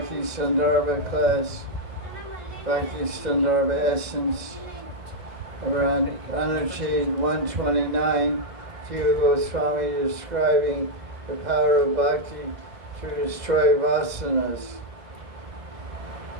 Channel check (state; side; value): late; left; 1.6 ms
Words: Sandarbha class, Bhakti Sandarbha essence, around Anuchad 129, Jiva Goswami describing the power of bhakti to destroy vasanas.